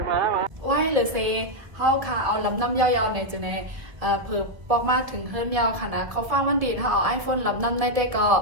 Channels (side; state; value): left; late; 1.5 ms